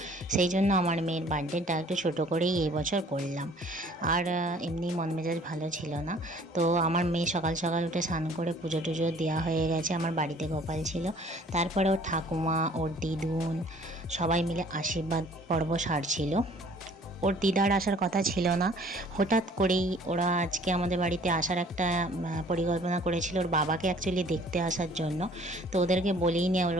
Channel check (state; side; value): normal; both; correlation 0.54